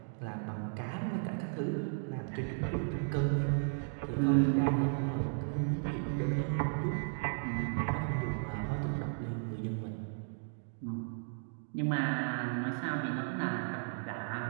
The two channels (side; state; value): left; silent; digital silence